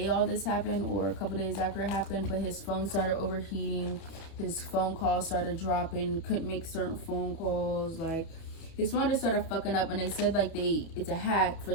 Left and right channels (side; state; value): right; late; 31 ms